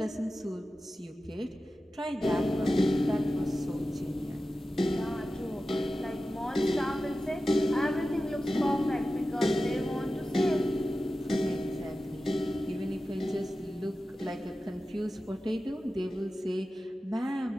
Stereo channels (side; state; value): both; normal; correlation 0.94